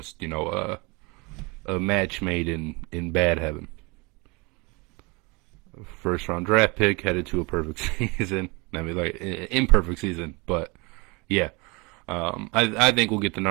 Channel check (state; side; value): quieter; left; 27.3 dB